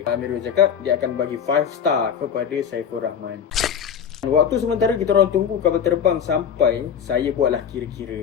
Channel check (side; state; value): right; quieter; 7.8 dB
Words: Amirul cakap dia akan bagi 5 star kepada Saiful Rahman. Waktu sementara kita orang tunggu kapal terbang sampai, saya buatlah